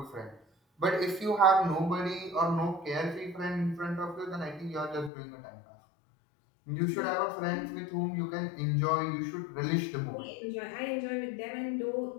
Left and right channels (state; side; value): drops out; right; at 5.1 s